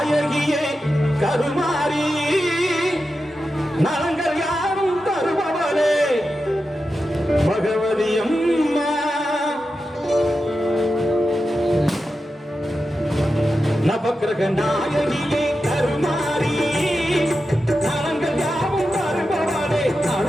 கருமாரி நலங்கள் யாரும் தருபவளே பகவதி அம்மா. நவக்கிரக நாயகியே கருமாரி நலங்கள் யாரும் தருபவளே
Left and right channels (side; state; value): both; normal; correlation 0.90